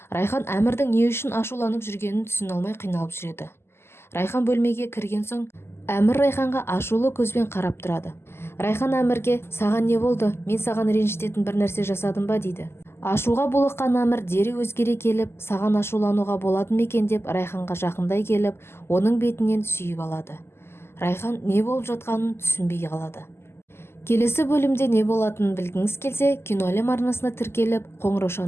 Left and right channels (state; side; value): late; right; 0.12 ms